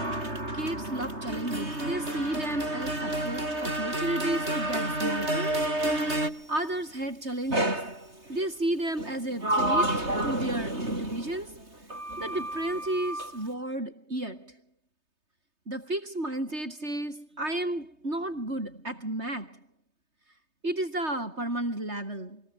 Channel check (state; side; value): late; left; 3.3 ms